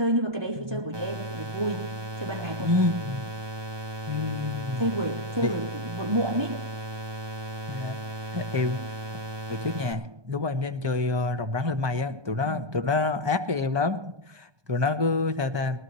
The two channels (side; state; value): left; late; 1.2 ms